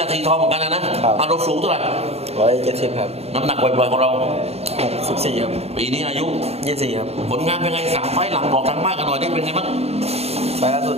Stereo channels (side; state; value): left; late; 0.30 ms